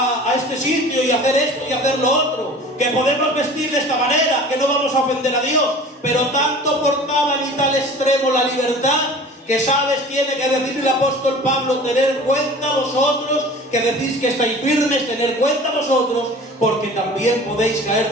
este sitio y hacer esto y hacer lo otro, que podemos vestir de esta manera, que no vamos a ofender a Dios. Pero tanto portaban y tal extremo la libertad, que sabes, tiene que decir el apóstol Pablo, tener cuenta vosotros, que decís que estáis firmes, tener cuenta vosotros, porque también podéis caer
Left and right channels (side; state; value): both; normal; correlation 0.42